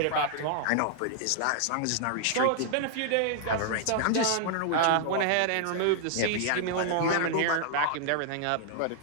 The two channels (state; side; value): different; both; correlation -0.01